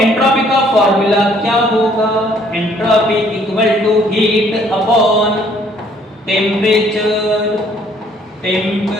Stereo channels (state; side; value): normal; both; correlation 0.62